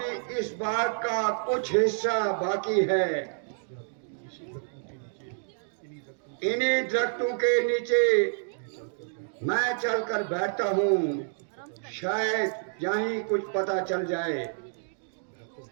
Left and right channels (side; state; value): left; silent; digital silence